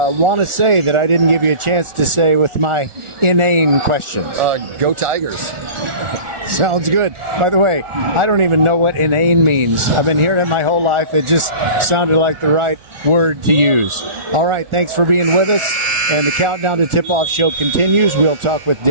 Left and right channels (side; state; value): left; late; 1.4 ms